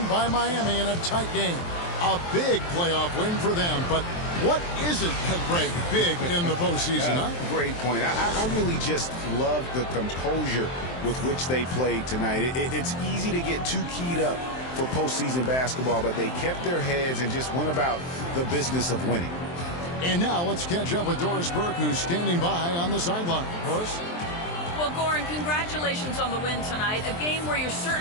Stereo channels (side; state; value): right; late; 23 ms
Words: by Miami in a tight game. A big playoff win for them, but what isn't Greg big in the postseason, huh? Great point. I really just love the composure with which they played tonight. It's easy to get too keyed up for postseason basketball, but they kept their heads and just went about the business of winning. And now let's catch up with Doris Burke, who's standing by on the sideline. Doris? Well, Goran, congratulations on the win tonight. A game where you